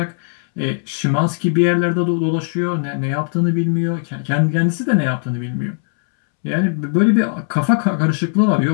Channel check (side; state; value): right; silent; 67 dB below the other